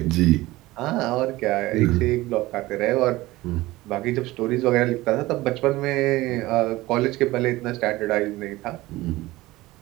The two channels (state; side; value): quieter; left; 18.7 dB